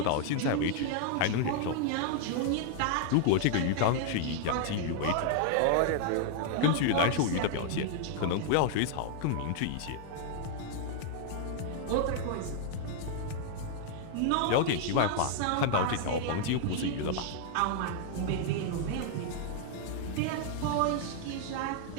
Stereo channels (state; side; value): different; both; correlation 0.00